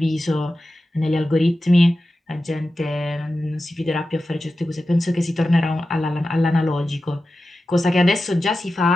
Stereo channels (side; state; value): both; normal; correlation 0.93